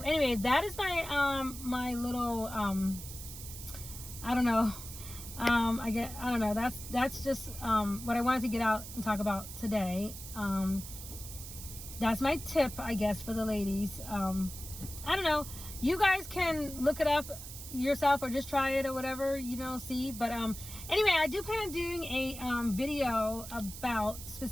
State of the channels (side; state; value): right; noise; hiss, 11 dB below the sound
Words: that is my my little I don't know. I don't know. That's just what I wanted to get out and talk about today. That's my tip, I guess, for the ladies. I don't know. You guys can look it up yourself or just try it or whatever, you know, see. But anyway, I do plan on doing a video about,